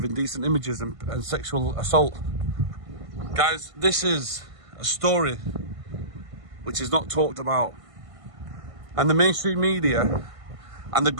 indecent images and sexual assault. Guys, this is a story which is not talked about. And the mainstream media and the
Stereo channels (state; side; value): late; left; 1.5 ms